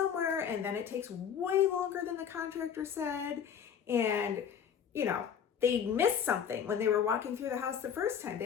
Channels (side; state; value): right; quieter; 7.9 dB